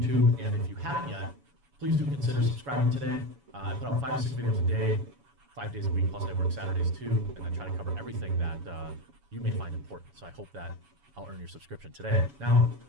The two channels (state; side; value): late; left; 7.1 ms